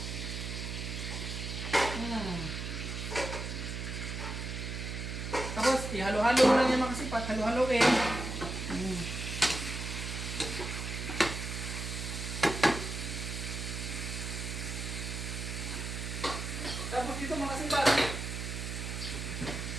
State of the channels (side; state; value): right; noise; hum, 5 dB below the sound